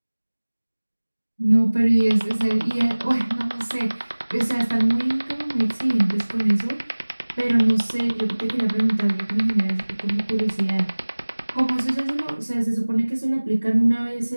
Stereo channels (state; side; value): inverted; both; correlation -1.00